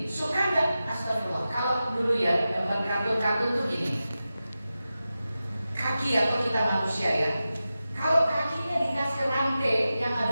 suka nggak? Astagfirullah. Kalau dulu ya, gambar kartun-kartun tuh gini. Kaki atau kita manusia ya. Kalau kakinya dikasih rantai yang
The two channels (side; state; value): both; inverted; correlation -0.93